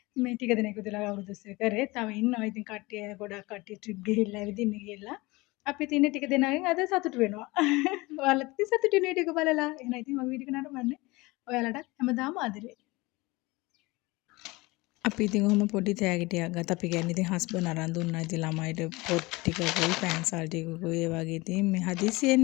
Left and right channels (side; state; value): right; quieter; 22.7 dB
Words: මේ ටික දෙනෙක් විතර අවුරුදු 20 කරේ. තව ඉන්නවා ඉතින් කට්ටිය ගොඩක් කට්ටිය ට්‍රිප් ගිහිල්ලා ඇවිදින්න ගිහිල්ලා. අපි ඉතින් ටික දෙනාගෙන් අද සතුටු වෙනවා. ඔයාලත් ඉතින් සතුටු වෙන වීඩියෝ එක බලලා. එහෙනම් ඉතින් මම වීඩියෝ එක නරඹන්නේ. ඔයාලට හැමදාම ආදරේ. අපි ඉතින් ඔහොම පොඩි තෑගිටියක් ගත්තා. අපි කියන්නේ ඉතින් හස්බන්ඩ් අරන් දුන්නා. ඉතින් ළමයිට පොත් ටිකකුයි පෑන්සල් ටිකකුයි ඒ වගේ ඉතින් මේ